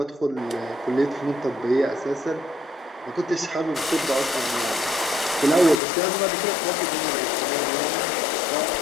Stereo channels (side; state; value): right; drops out; at 5.8 s